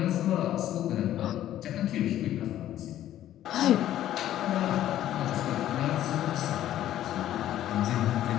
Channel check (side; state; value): right; quieter; 12.5 dB